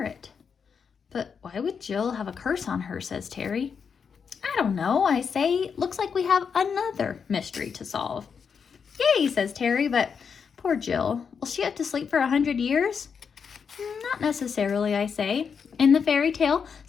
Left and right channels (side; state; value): right; quieter; 6.3 dB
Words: But why would Jill have a curse on her, says Terry. I don't know, I say. Looks like we have another mystery to solve. Yay, says Terry, but poor Jill. Will she have to sleep for 100 years? Not necessarily, I say. In the fairy tale,